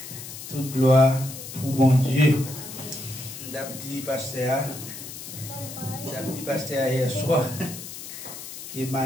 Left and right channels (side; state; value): left; noise; hiss, 11 dB below the sound